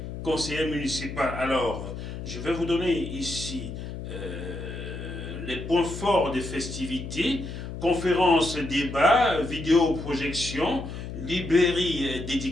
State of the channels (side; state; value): left; noise; hum, 8 dB below the sound